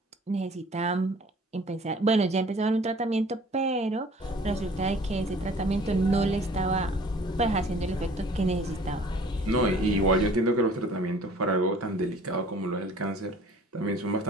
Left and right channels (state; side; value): normal; both; correlation 0.51